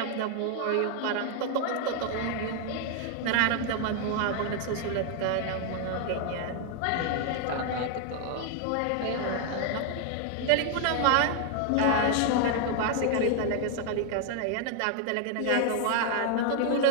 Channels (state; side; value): different; both; correlation 0.00